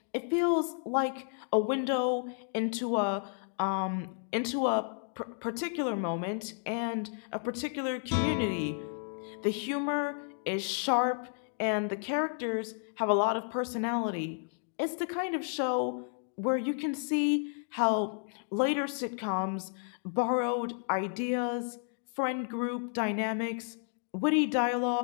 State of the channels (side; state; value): right; silent; 56 dB below the other